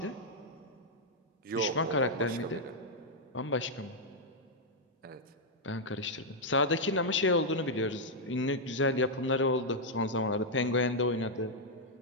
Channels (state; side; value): normal; both; correlation -0.03